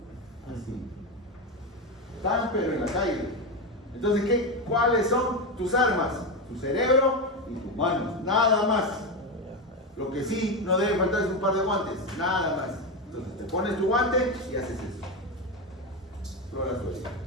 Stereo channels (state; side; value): normal; both; correlation 0.14